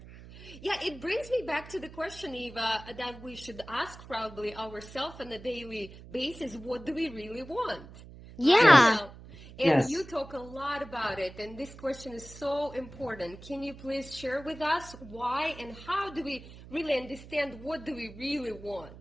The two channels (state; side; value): noise; right; hum, 17 dB below the sound